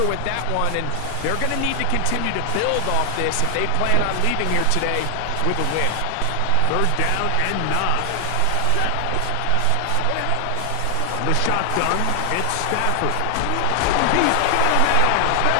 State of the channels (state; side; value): different; both; correlation 0.00